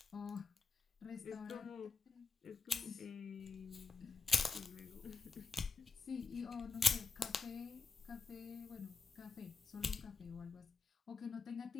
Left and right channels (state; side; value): quieter; right; 4.3 dB